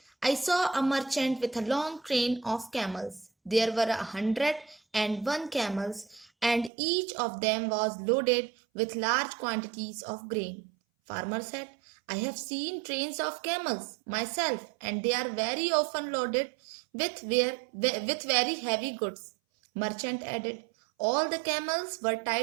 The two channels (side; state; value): left; drops out; at 6.7 s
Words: I saw a merchant with a long train of camels. There were 101 camels, and each of them was loaded with large quantities of grain. Farmer said, I have seen trains of camels myself, and they are very often loaded with very heavy goods. Merchant added, all the camels were